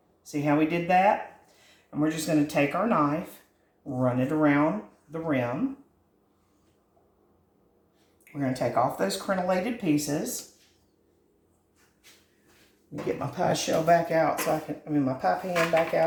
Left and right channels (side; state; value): both; identical; correlation 1.00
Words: See how we did that? And we're just going to take our knife, run it around the rim. We're going to take off those crenellated pieces. Get my pie shell back out so my pie pan back